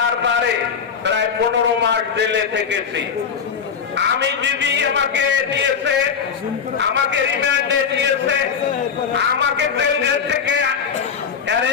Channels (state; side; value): quieter; right; 6.6 dB